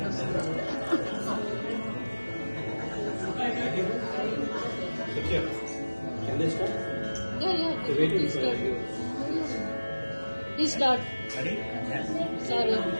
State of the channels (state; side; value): inverted; both; correlation -1.00